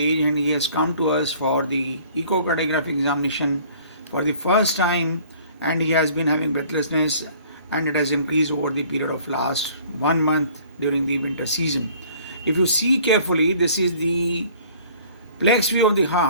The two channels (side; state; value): both; inverted; correlation -0.53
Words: and he has come to us for the echocardiographic examination for the first time, and he has been having breathlessness and it has increased over the period of last 1 month during the winter season. If you see carefully, this is the plex view of the